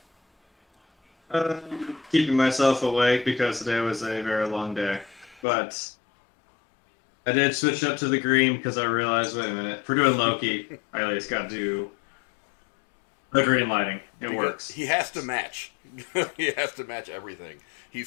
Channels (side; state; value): right; drops out; at 5.4 s